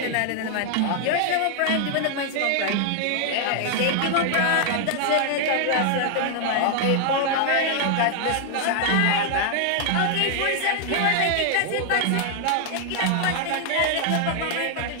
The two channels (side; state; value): both; different; correlation 0.00